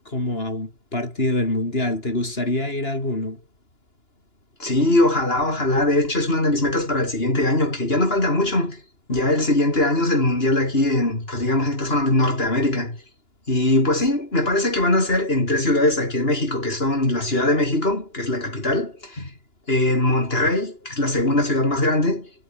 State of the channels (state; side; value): late; right; 2.9 ms